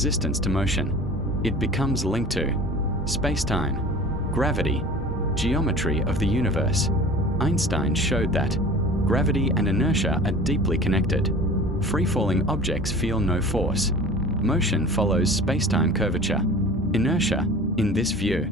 to motion. It becomes linked to space-time, gravity, geometry of the universe. Einstein showed that gravity and inertia are deeply connected. Free-falling objects feel no force. Motion follows space-time curvature. Inertia, in this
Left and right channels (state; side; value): normal; both; correlation 0.41